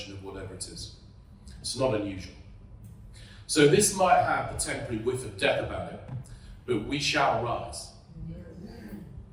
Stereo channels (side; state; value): both; identical; correlation 1.00